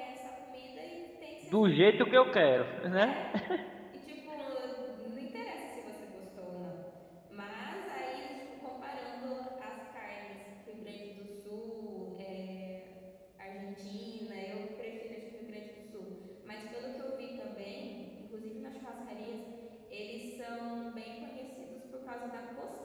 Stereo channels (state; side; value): identical; both; correlation 1.00